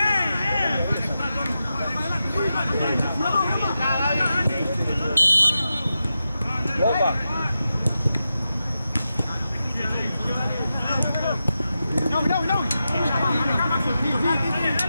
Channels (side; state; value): both; inverted; correlation -0.90